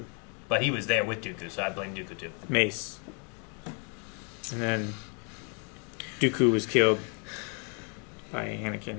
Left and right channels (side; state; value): right; quieter; 37.8 dB